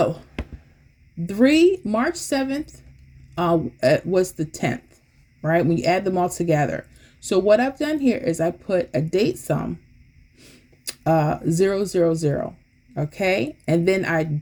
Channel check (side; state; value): both; identical; correlation 1.00